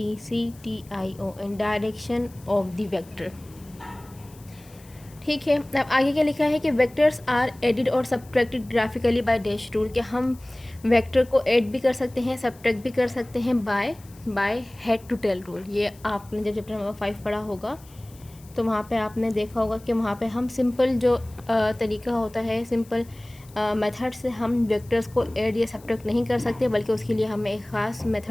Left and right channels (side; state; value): left; noise; hiss, 25 dB below the sound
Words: and direction of the vector. ठीक है, अब आगे क्या लिखा है कि वेक्टर्स आर एडिड और subtracted graphically by dash rule, कि हम वेक्टर को ऐड भी कर सकते हैं, सब्ट्रैक्ट भी कर सकते हैं by head to tail rule. ये आपने जब चैप्टर नंबर 5 पढ़ा होगा तो वहाँ पे आपने देखा होगा कि वहाँ पे हम सिंपल जो तरीका होता है, सिंपल मेथड से हम वेक्टर्स को ऐड या सब्ट्रैक्ट नहीं कर सकते, बल्कि उसके लिए हमें एक ख़ास